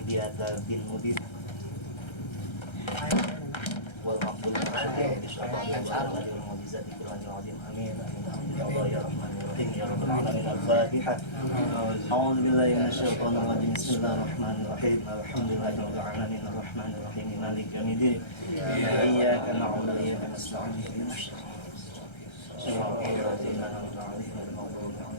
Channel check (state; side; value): late; right; 1.3 ms